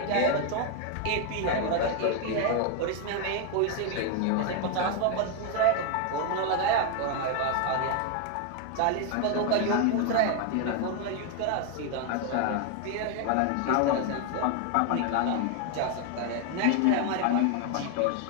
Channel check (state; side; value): different; both; correlation 0.00